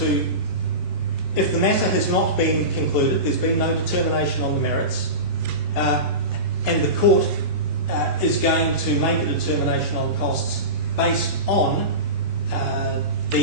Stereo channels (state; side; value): late; right; 2.9 ms